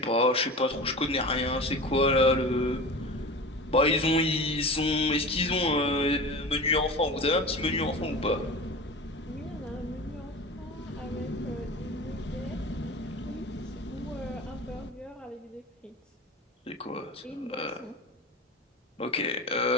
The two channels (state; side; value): normal; both; correlation 0.32